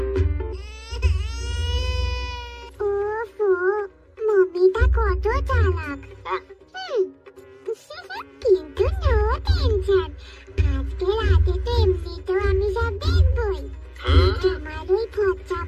ওফো, মমিটা কত চালাক। কিন্তু নো টেনশন, আজকে রাতে তো এমনিতেও আমি সব দেখবই। তোমার ওই ফচ্চা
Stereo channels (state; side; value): identical; both; correlation 1.00